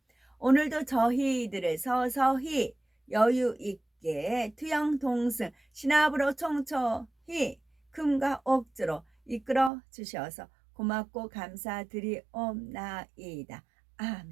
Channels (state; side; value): drops out; left; at 9.7 s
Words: 오늘도 저희들을 서서히 여유 있게 투영동승 신압으로 총총히 금과 옥주로 이끌어 주셔서 고맙고 감사드리옵나이다.